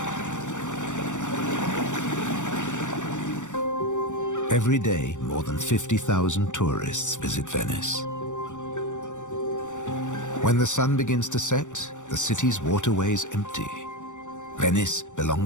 Every day, more than 50,000 tourists visit Venice. When the sun begins to set, the city's waterways empty. Venice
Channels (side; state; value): right; late; 0.85 ms